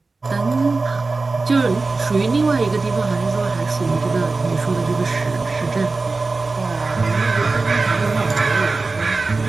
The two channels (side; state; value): left; quieter; 3.8 dB